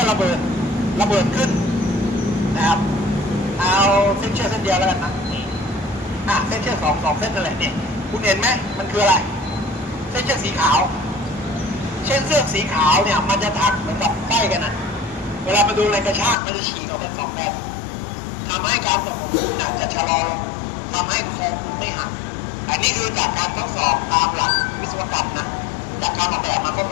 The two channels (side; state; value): right; drops out; at 16.4 s